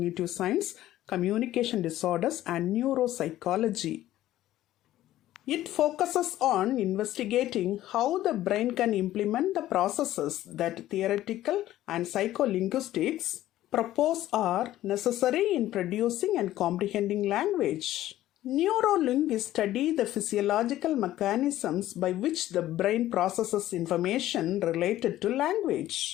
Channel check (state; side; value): quieter; right; 14.1 dB